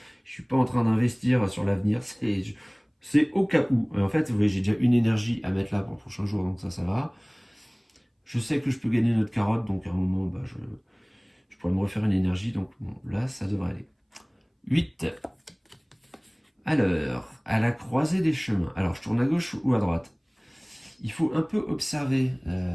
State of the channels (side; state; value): both; identical; correlation 1.00